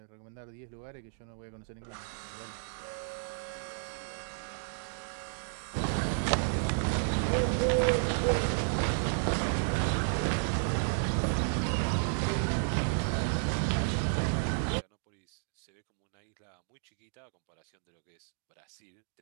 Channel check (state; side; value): silent; left; digital silence